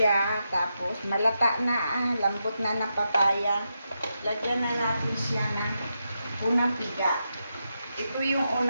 Tapos, malata na, lambot na ng papaya. Lagyan na natin siya ng unang piga. Ito yung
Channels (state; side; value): inverted; both; correlation -0.86